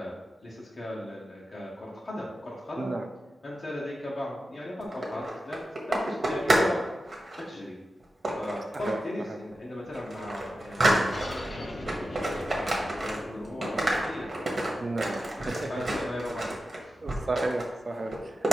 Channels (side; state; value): both; normal; correlation 0.92